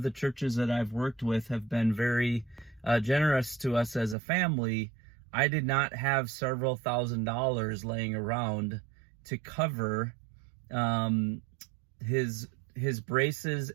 the churches that I've worked with have been very generous to us as a family, I did not have several $1,000s laying around to cover his braces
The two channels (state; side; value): drops out; left; at 4.2 s